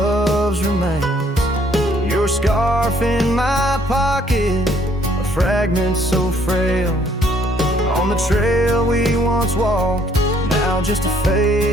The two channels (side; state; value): both; normal; correlation 0.64